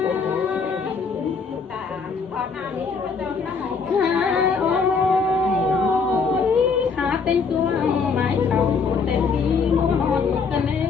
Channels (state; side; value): quieter; right; 5.1 dB